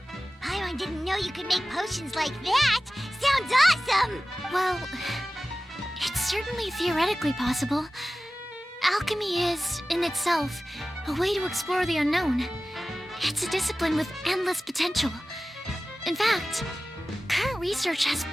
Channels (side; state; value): both; normal; correlation 0.96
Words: Paimon didn't know you could make potions like that. Sounds awesome! Well, it's certainly theoretically possible. Alchemy is, in itself, a way to explore the unknown. It's a discipline with endless potential. In fact, current research has